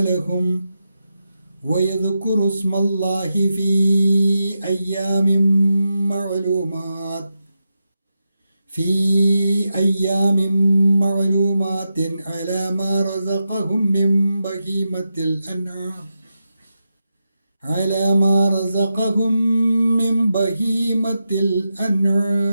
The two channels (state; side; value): inverted; both; correlation -0.89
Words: لهم ويذكروا اسم الله في أيام معلومات على ما رزقهم من بهيمة